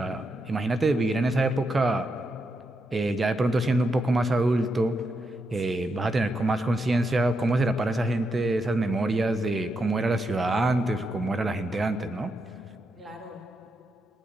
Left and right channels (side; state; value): both; normal; correlation 0.83